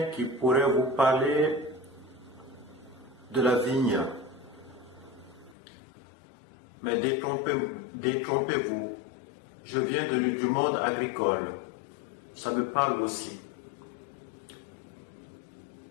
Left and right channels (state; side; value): drops out; right; at 5.6 s